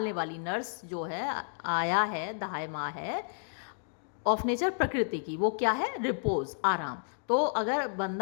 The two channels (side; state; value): right; silent; digital silence